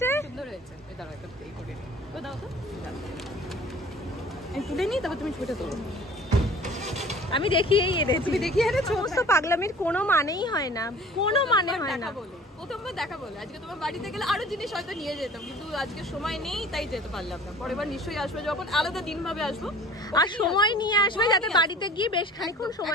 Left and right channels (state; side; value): normal; both; correlation 0.47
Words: সুন্দর হয়েছে। এই দাঁড়াও, একটা এই করে তো দাও তো, এই তুলে নি, তারপর তুমি ছবিটা তোলো। আমি দেখিয়েই এনেছি। তুমি দেখিয়ে এনেছো? সমস্ত পাগলামির কোনো মানেই হয় না, কোনো মানে হয় না। প্রথমবার দেখা বলে আজকে তোমার বাড়িতে গেলে আরো জিনিস হয়তো নিয়ে যেতাম, কিন্তু আজকে সময় নেই তাই যেতে পারলাম না। পরের বার নিশ্চয়ই আসবে, যখন আলাদা দিন ভাবে আসবো, আর সময় নিয়ে আসবে যাতে বাড়িতে গিয়ে বেশ খানিকক্ষণ